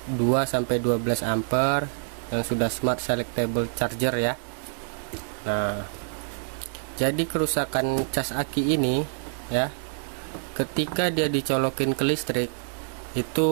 2-12 ampere yang sudah smart selectable charger ya. Nah, jadi kerusakan cas aki ini ya, ketika dia dicolokin ke listrik,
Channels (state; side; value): silent; left; 56 dB below the other